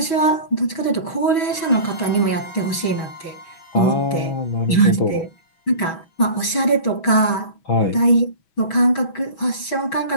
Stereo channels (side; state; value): right; late; 6.2 ms